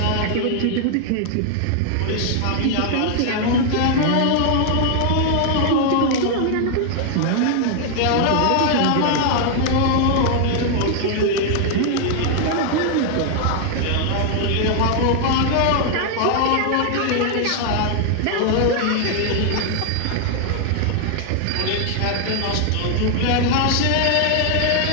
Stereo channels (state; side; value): different; both; correlation 0.00